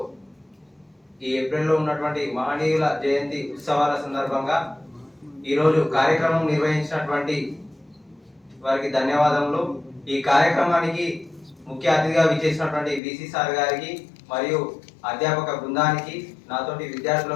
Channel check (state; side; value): drops out; right; at 13.0 s